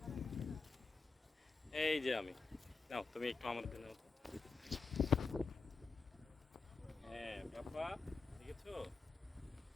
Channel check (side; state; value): right; quieter; 4.4 dB